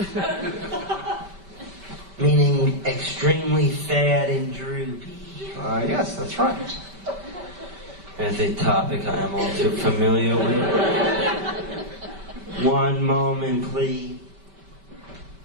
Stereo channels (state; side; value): late; left; 5.1 ms